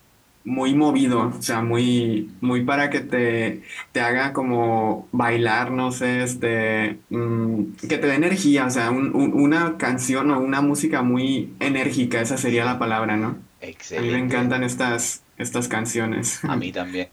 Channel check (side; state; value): both; identical; correlation 1.00